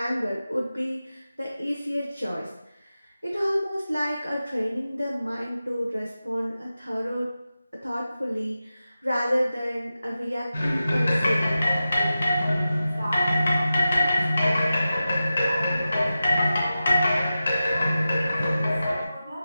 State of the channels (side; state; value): both; inverted; correlation -0.93